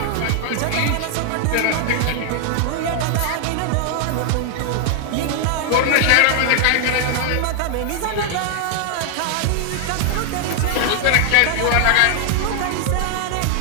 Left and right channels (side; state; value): both; different; correlation 0.00